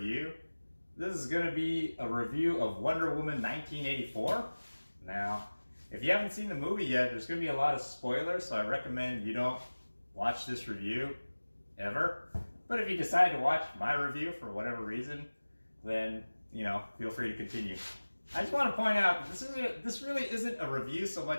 This is going to be a review of Wonder Woman 1984. Now, if you haven't seen the movie yet, there's going to be a lot of spoilers, so I recommend you don't watch this review ever. But if you decide to watch my review for whatever reason, then, feel free to continue. I just want to point out, this really isn't a review so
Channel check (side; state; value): both; inverted; correlation -1.00